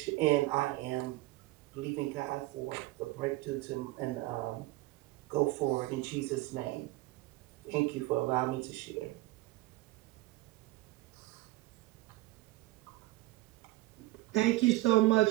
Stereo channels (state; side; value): quieter; left; 18.8 dB